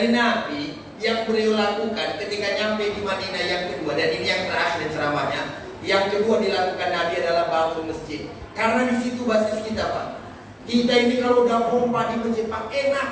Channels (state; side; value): identical; both; correlation 1.00